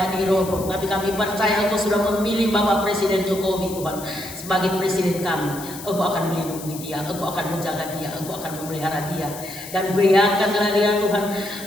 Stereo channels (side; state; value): left; noise; hiss, 13 dB below the sound